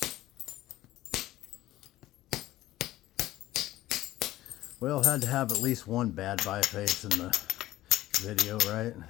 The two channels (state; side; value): quieter; right; 15.6 dB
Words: Well, had to have at least one bad biface in the video, right?